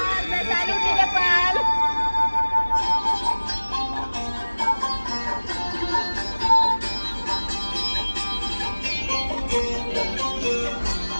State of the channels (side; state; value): both; inverted; correlation -1.00